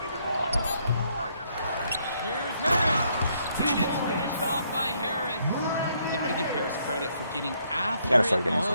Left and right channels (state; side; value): inverted; both; correlation -0.71